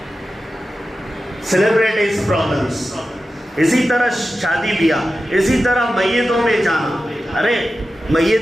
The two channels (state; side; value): normal; both; correlation 0.93